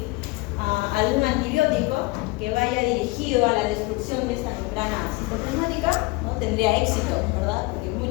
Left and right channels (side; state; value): right; quieter; 23.1 dB